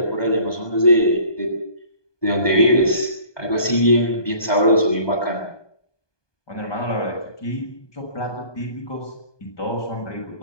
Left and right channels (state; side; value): late; right; 1.2 ms